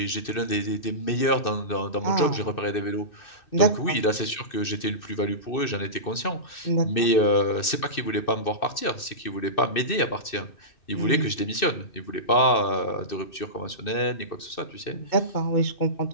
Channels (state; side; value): late; right; 2.6 ms